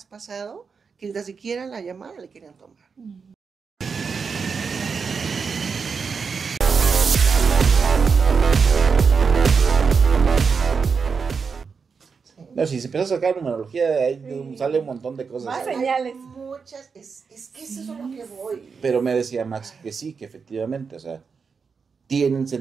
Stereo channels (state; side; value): quieter; left; 5.5 dB